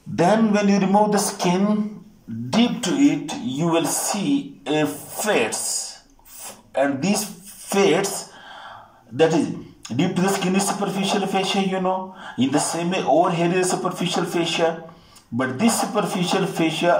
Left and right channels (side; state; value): both; identical; correlation 1.00